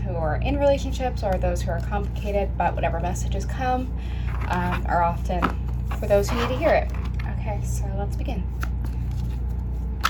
who are in relationships or those who are complicated, but whatever messages come are often for those who need to hear it. Okay, so let's begin.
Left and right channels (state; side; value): identical; both; correlation 1.00